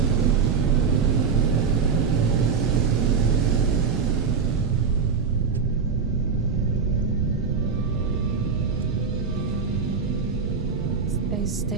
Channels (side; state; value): left; quieter; 5.7 dB